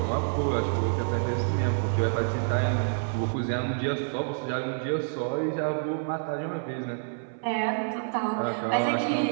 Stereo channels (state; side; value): silent; left; 58 dB below the other